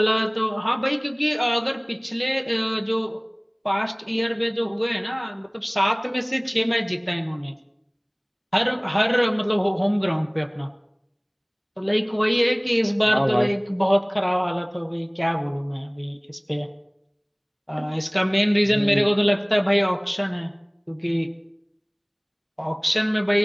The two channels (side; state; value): both; identical; correlation 1.00